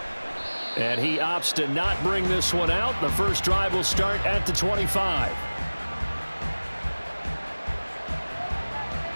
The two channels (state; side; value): inverted; both; correlation -1.00